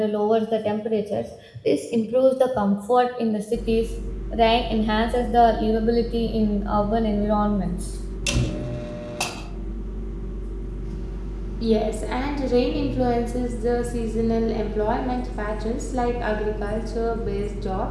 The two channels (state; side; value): identical; both; correlation 1.00